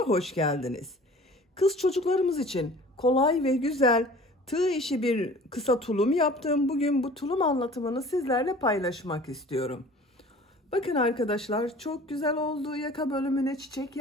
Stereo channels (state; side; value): normal; both; correlation 0.46